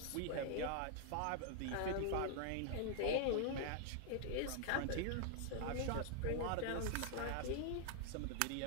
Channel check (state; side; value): different; both; correlation -0.01